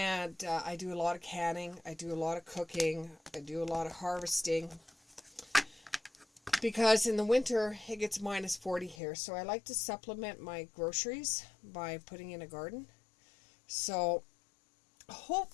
I do a lot of canning, I do a lot of cooking, I do a lot of harvesting. Because in the winter, it gets minus 40 here. So I like to supplement my groceries by putting in a garden. So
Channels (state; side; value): drops out; right; at 9.0 s